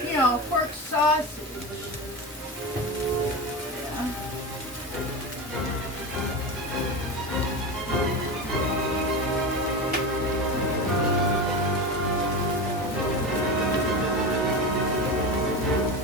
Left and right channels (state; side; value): normal; both; correlation 0.22